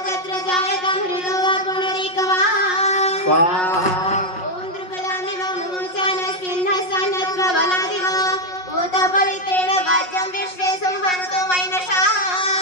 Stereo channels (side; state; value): right; late; 5.5 ms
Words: तत्र जायतां हृदो वा पुनरीकवा स्वाहा ओम द्रुपदामिव मुमुचानस्मिन्नस्सन्नत्व बलादिव भूतपवित्रेण वाज्यं विश्वे संहन्तु वैनशा